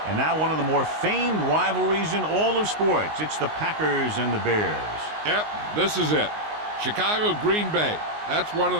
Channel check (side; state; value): left; late; 19 ms